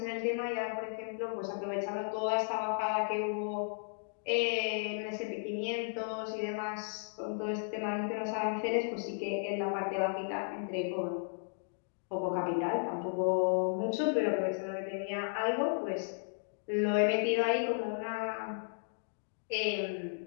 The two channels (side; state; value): right; silent; digital silence